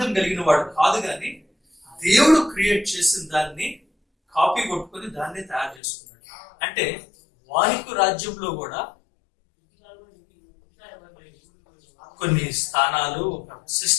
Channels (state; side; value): drops out; right; at 5.8 s